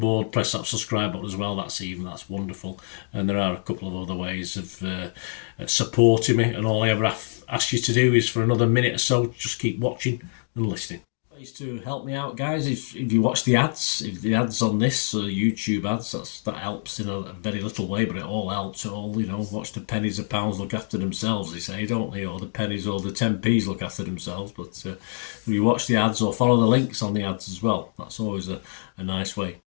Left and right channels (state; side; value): silent; right; digital silence